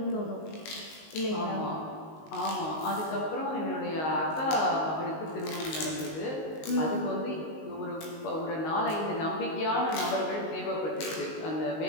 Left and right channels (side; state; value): right; late; 19 ms